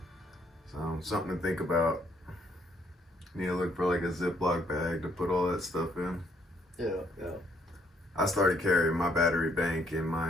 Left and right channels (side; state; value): both; normal; correlation 0.69